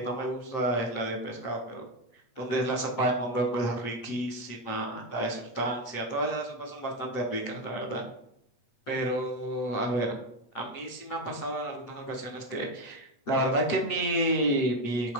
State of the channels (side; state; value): right; late; 8.4 ms